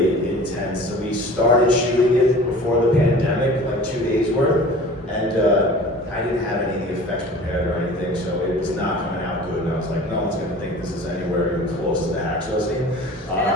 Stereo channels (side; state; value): both; normal; correlation 0.42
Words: intense. So we started shooting it before the pandemic, like 2 days worth, and I didn't have any of the effects prepared or anything, so it was not coming out good. And I was like, no one's gonna think this is anywhere even close to the hacksaw scene.